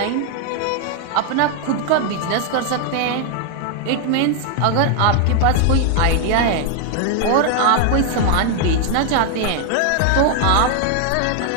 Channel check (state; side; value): different; both; correlation 0.00